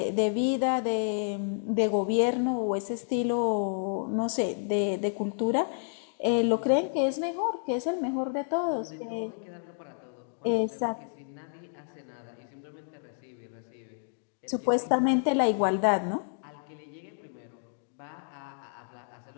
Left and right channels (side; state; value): right; silent; digital silence